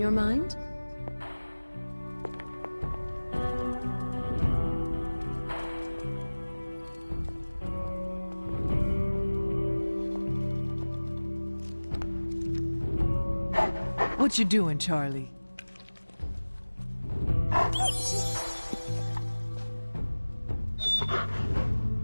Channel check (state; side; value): inverted; both; correlation -1.00